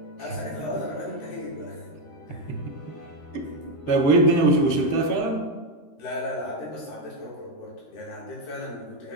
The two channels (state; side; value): late; right; 13 ms